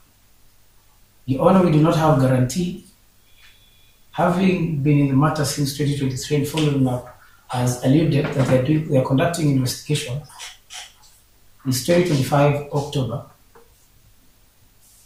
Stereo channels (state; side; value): identical; both; correlation 1.00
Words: Your Honor, we do not have guarantee. Having been in the matter since 2023 and following up, as alluded, that they are conducting investigation, is 2025 October.